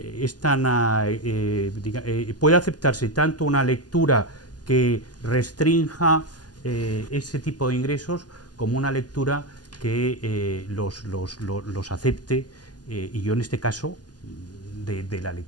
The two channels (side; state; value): right; late; 0.69 ms